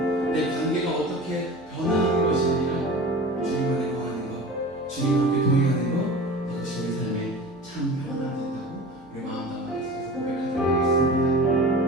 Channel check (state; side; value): noise; right; hum, 28 dB below the sound